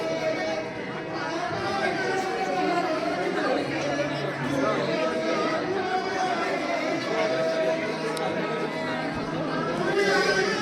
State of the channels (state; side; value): identical; both; correlation 1.00